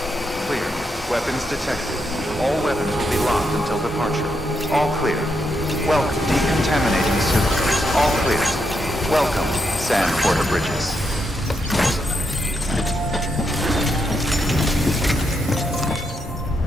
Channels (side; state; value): both; normal; correlation 0.80